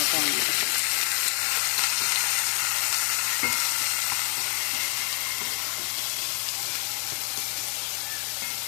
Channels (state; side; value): quieter; right; 39.9 dB